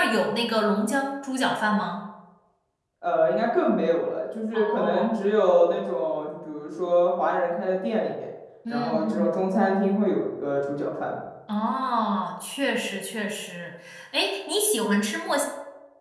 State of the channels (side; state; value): both; identical; correlation 1.00